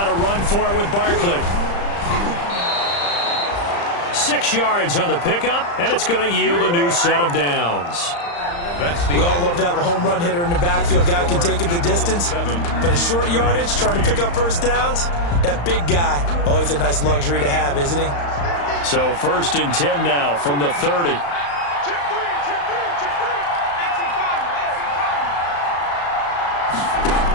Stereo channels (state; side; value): late; right; 35 ms